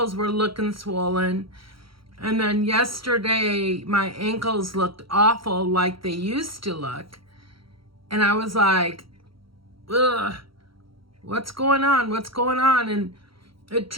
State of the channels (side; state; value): left; late; 0.74 ms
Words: were looking swollen. And then yesterday my ankles looked awful like they used to look. And I was like, ugh, what's going on? What's going on? And it